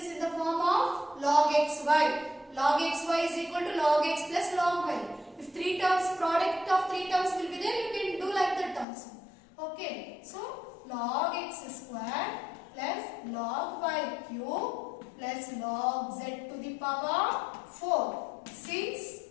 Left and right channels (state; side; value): drops out; right; at 8.8 s